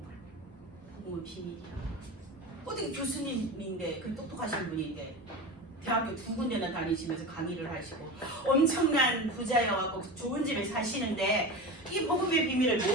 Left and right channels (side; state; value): both; normal; correlation 0.27